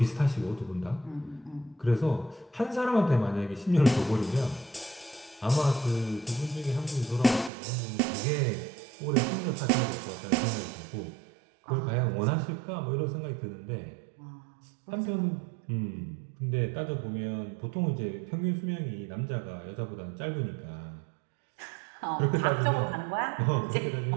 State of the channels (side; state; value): left; drops out; at 7.5 s